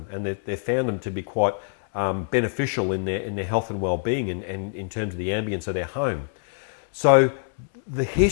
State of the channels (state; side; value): silent; right; 60 dB below the other